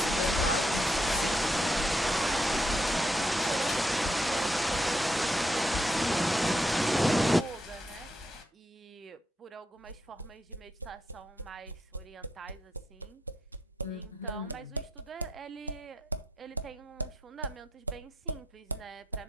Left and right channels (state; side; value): normal; both; correlation 0.79